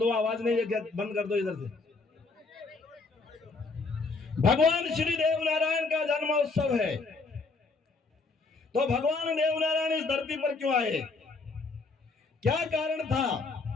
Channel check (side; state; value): right; quieter; 4.0 dB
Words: आवाज नहीं है, बंद कर दो इधर से। भगवान श्री देवनारायण का जन्मोत्सव है, तो भगवान देवनारायण इस धरती पर क्यों आए, क्या कारण था,